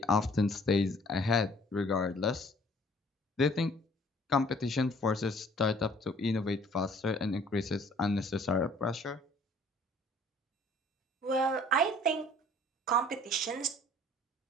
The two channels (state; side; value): normal; both; correlation 0.56